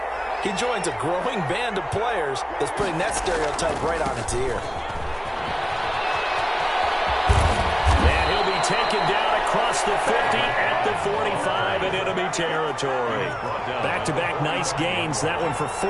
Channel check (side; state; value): both; identical; correlation 1.00